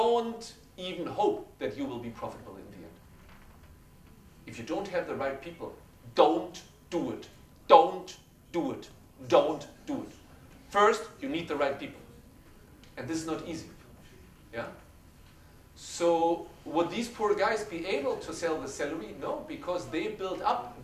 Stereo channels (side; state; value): both; identical; correlation 1.00